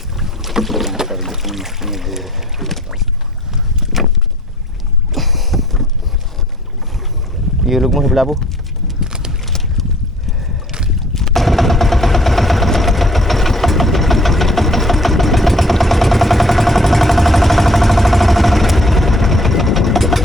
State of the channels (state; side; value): normal; both; correlation 0.55